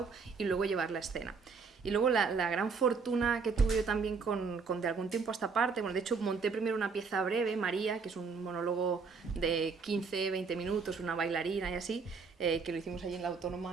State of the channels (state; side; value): quieter; left; 5.0 dB